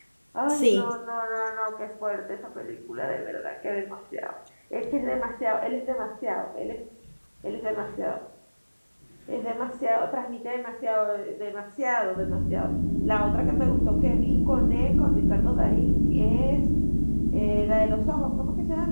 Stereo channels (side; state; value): both; inverted; correlation -1.00